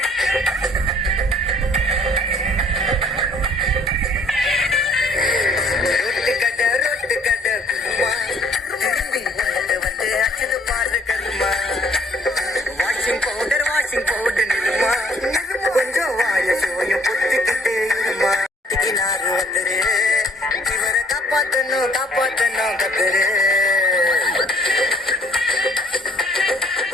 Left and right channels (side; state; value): both; normal; correlation 0.60